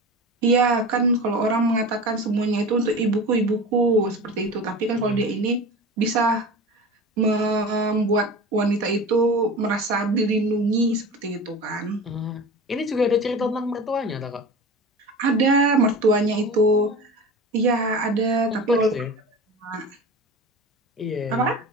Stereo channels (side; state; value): both; normal; correlation 0.33